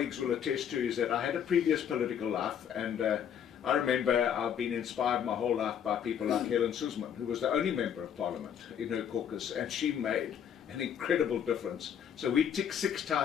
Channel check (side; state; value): right; quieter; 8.6 dB